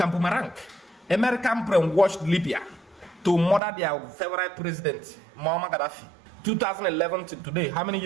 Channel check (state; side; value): drops out; left; at 3.6 s